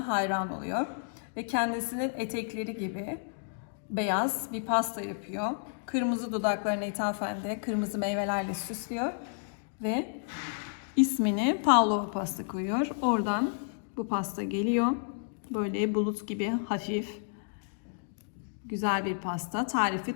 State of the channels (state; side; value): silent; right; digital silence